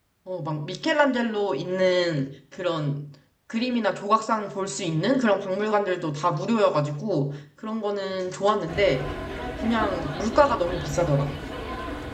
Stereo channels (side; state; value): both; identical; correlation 1.00